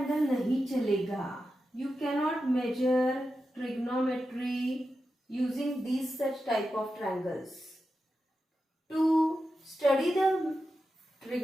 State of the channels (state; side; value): normal; both; correlation 0.90